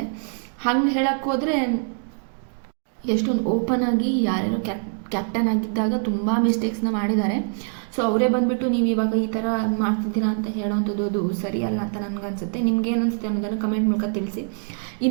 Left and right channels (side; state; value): left; silent; 63 dB below the other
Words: ಹಂಗೆ ಹೇಳೋಕ್ಕೋದ್ರೆ ಎಷ್ಟೊಂದು ಓಪನ್ ಆಗಿ ಯಾರ್ಯಾರು ಕ್ಯಾಪ್ಟನ್ ಆಗಿದ್ದಾಗ ತುಂಬ ಮಿಸ್ಟೇಕ್ಸ್ನ ಮಾಡಿದ್ದಾರೆ. ಸೊ ಅವರೇ ಬಂದುಬಿಟ್ಟು ನೀವು ಇವಾಗ ಈ ಥರ ಮಾಡ್ತಿದ್ದೀರಾ ಅಂತ ಹೇಳೋವಂಥದ್ದು ಅದು ಸರಿಯಲ್ಲ ಅಂತ ನನಗನ್ಸುತ್ತೆ. ನಿಮ್ಗೇನು ಅನಿಸುತ್ತೆ ಅನ್ನೋದನ್ನು ಕಮೆಂಟ್ ಮೂಲಕ ತಿಳಿಸಿ.